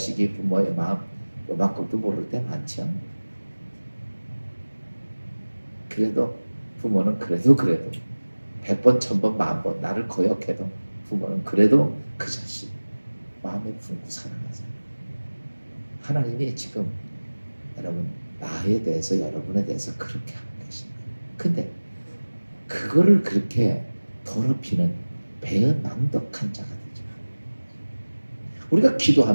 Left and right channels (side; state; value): both; inverted; correlation -1.00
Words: 부모의 마음 요만큼도 모를 때 많죠. 그래도 부모는 그래도 100번, 1000번, 10,000번 나를 거역해도 부모는 그래도 그 자식 마음에 품고 사랑하세요. 하나님이 지금 여러분 나에 대해서, 여러분에 대해서 그렇게 하고 계십니다. 근데 그거를 그렇게 더럽히는 배은망덕한 자가 되지 말아요. 우리가